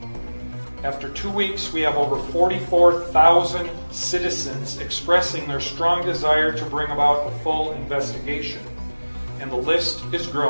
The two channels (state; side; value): inverted; both; correlation -1.00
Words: After 2 weeks, we have over 44,000 citizens expressing their strong desire to bring about a full investigation, and the list is